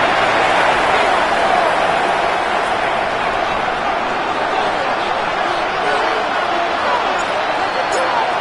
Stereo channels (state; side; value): identical; both; correlation 1.00